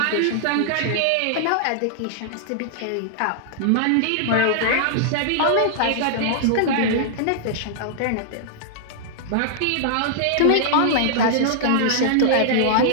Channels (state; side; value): different; both; correlation -0.01